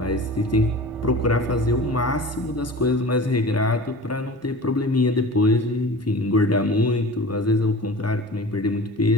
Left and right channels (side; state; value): both; normal; correlation 0.37